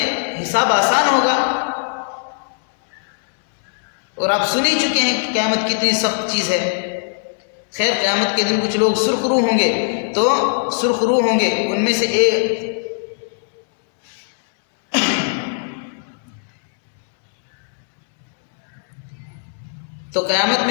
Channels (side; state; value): right; silent; digital silence